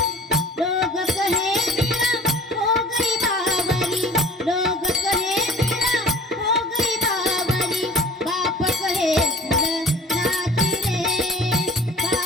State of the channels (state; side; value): normal; both; correlation 0.46